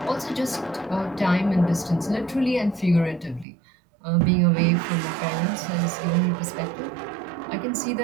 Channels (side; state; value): left; drops out; at 3.5 s